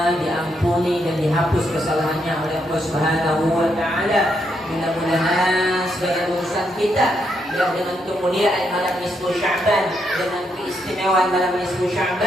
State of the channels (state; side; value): normal; both; correlation 0.78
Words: diampuni dan dihapus kesalahannya oleh Allah Subhanahu wa Ta'ala. Mudah-mudahan segala urusan kita yang dengan kemuliaan malam nisfu Sya'ban, dengan keistimewaan malam nisfu